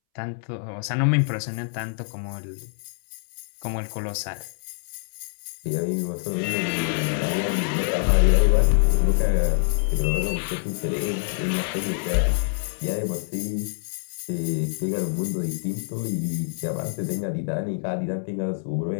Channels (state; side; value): silent; right; 61 dB below the other